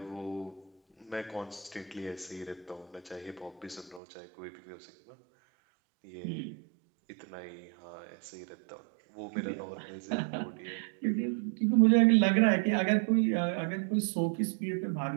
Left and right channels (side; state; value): left; drops out; at 4.0 s